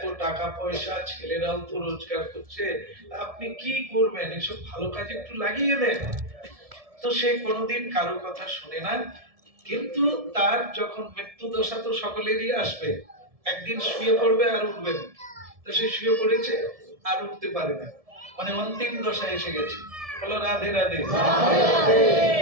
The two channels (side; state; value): left; late; 1.7 ms